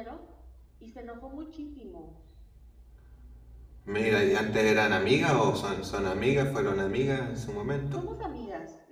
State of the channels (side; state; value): both; identical; correlation 1.00